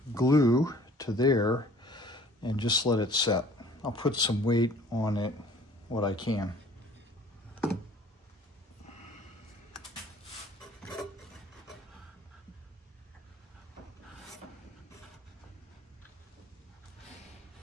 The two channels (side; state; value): both; normal; correlation 0.52